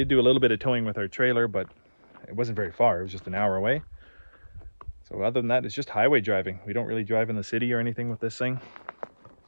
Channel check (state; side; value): inverted; both; correlation -1.00